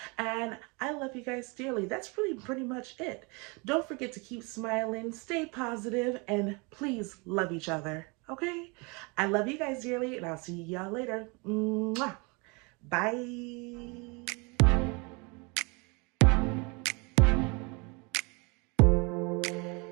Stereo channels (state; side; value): quieter; left; 29.8 dB